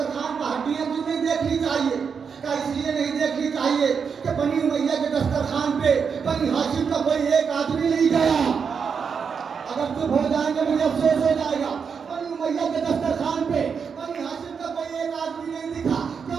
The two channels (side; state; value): left; quieter; 6.2 dB